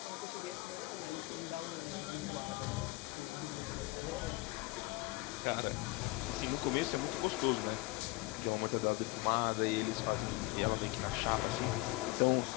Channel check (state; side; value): quieter; right; 21.5 dB